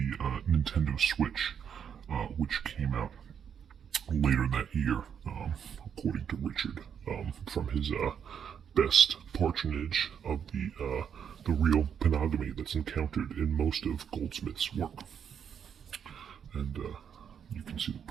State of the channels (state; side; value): quieter; left; 7.9 dB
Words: Nintendo Switch, which came out later that year, according to Richard, from his best patronage of the real panogamy that's encountered in most of Goldsmith's work. And you can see the